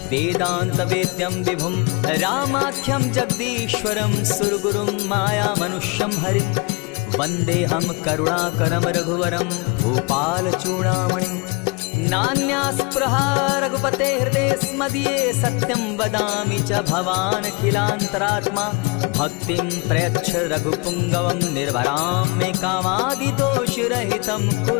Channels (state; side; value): quieter; right; 29.0 dB